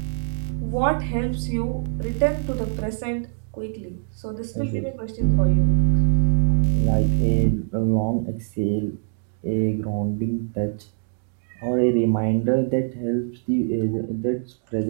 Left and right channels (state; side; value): silent; left; digital silence